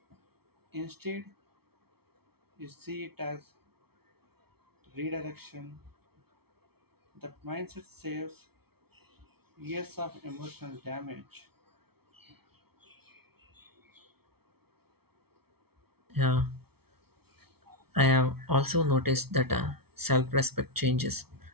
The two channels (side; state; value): left; late; 0.95 ms